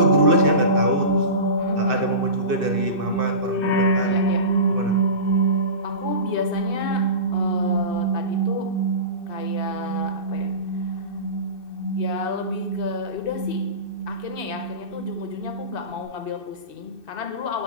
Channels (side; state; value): left; late; 2.6 ms